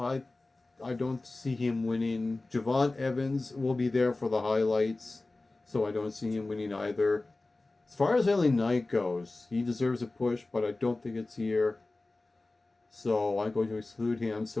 don't see him winning. Javon Evans will be there for the highlights, so I don't see him winning either. As far as LA Knight goes, he deserves a push, but I don't think it's here. So I'm going to exclude him.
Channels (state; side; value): quieter; right; 3.1 dB